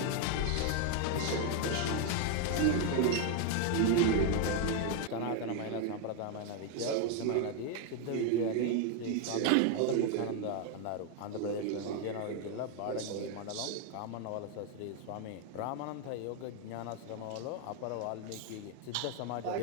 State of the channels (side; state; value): both; different; correlation 0.00